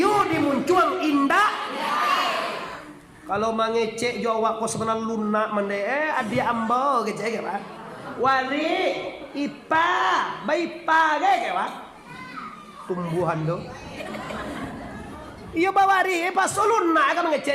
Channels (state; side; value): identical; both; correlation 1.00